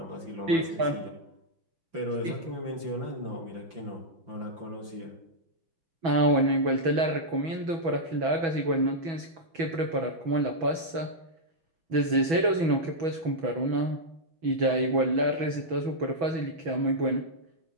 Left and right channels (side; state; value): left; late; 6.1 ms